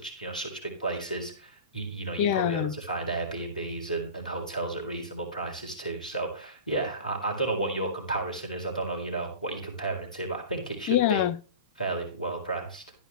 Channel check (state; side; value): inverted; both; correlation -0.33